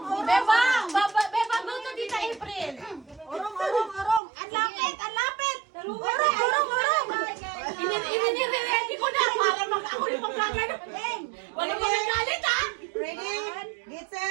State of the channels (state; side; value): drops out; left; at 4.2 s